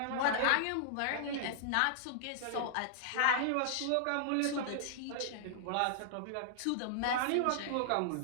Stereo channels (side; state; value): both; different; correlation -0.01